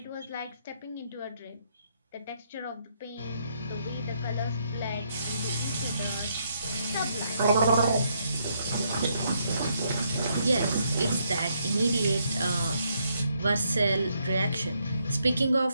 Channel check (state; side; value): inverted; both; correlation -0.75